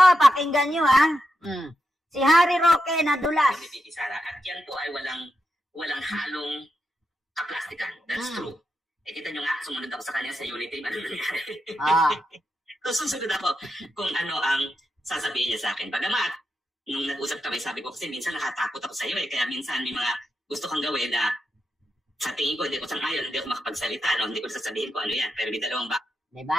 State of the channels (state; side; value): normal; both; correlation 0.86